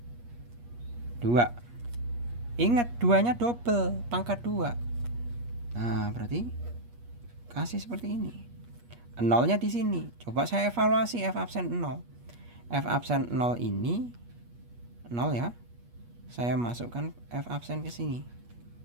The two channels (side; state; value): left; late; 8.4 ms